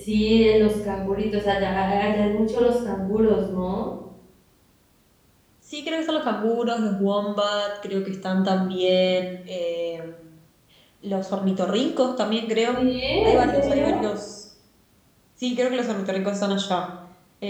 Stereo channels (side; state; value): both; identical; correlation 1.00